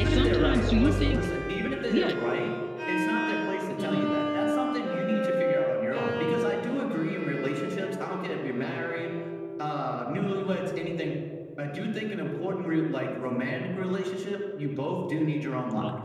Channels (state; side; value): identical; both; correlation 1.00